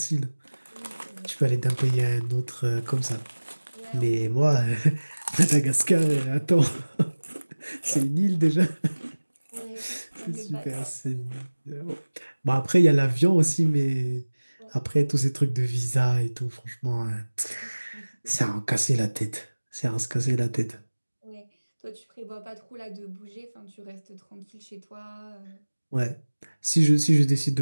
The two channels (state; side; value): inverted; both; correlation -1.00